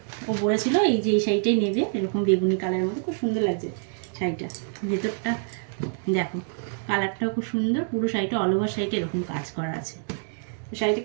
ও বলেছিল এই যে এই শাড়িটাই নেবে, এরকম বেগুনি কালারের মধ্যে, খুব সুন্দর লাগছে শাড়িটা। ভেতরটা দেখো, কালারটাও খুব সুন্দর, পুরো শাড়িটা অল ওভার শাড়িটা এরকম কাজ করা আছে। তো শাড়িটা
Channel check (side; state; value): left; silent; digital silence